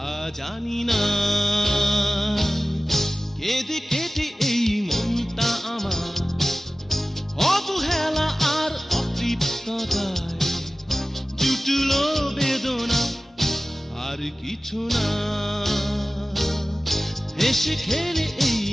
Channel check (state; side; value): normal; both; correlation 0.97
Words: জানি না। কেঁদে কেটে এই মনটা আমার অবহেলা আর অতৃপ্ততায় জুটলো বেদনা, আর কিছু না। হেসে খেলে এই